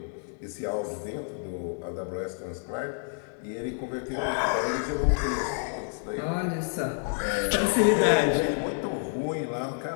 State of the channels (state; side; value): silent; right; 59 dB below the other